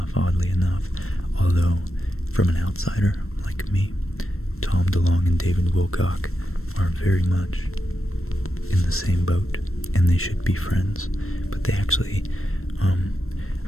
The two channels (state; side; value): late; right; 0.62 ms